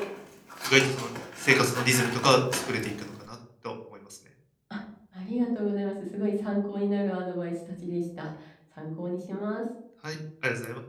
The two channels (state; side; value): identical; both; correlation 1.00